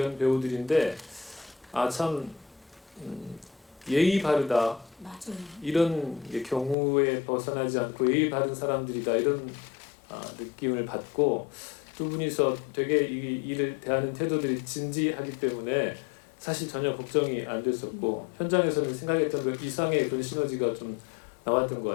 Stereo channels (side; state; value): right; drops out; at 6.8 s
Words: 배우들인데 참 예의 바르다 맞아요. 이런 경우에 벗어나지 않고 예의 바른 사람들이다 이런 느낌을 받고 두 분이서 되게 이 일을 대하는 태도들이 진지하기 때문에 사실 전혀 걱정이 안 됐었고 현장에서는 생각했던 그 이상의 그런 시너지가 좀 나왔던 것